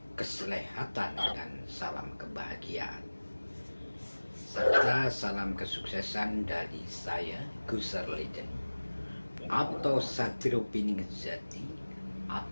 keselehatan, dan salam kebahagiaan. Serta salam kesuksesan dari saya, Gusar Legend, atau Satrio Piningejati,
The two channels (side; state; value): both; inverted; correlation -1.00